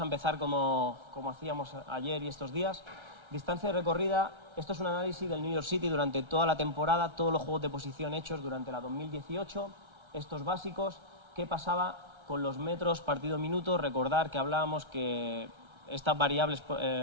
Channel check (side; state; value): left; late; 1.3 ms